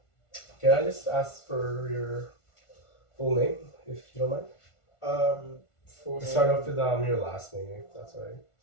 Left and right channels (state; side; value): late; right; 1.4 ms